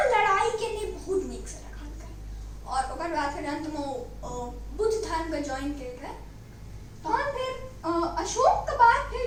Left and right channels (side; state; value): both; identical; correlation 1.00